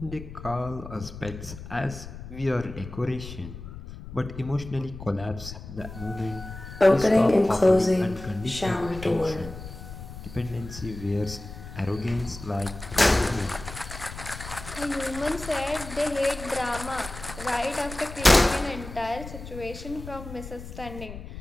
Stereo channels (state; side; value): noise; left; rumble, 12 dB below the sound